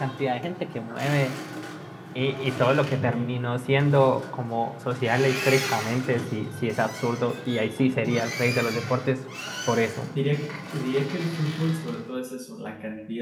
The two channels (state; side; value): identical; both; correlation 1.00